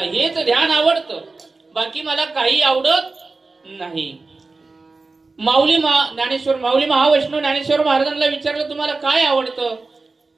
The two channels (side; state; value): left; quieter; 3.7 dB